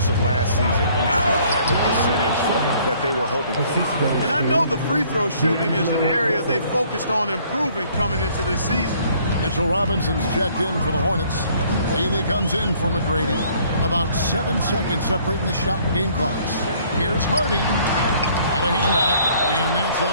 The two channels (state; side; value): inverted; both; correlation -0.60